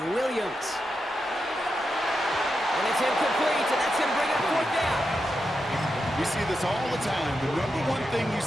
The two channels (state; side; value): normal; both; correlation 0.87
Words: Williams. And it's incomplete, and that's going to bring up fourth down. We see this all the time. The number one thing you